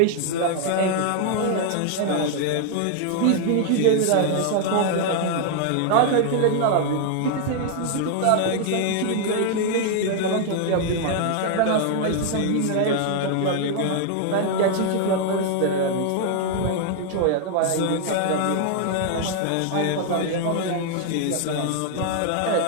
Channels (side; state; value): both; different; correlation 0.00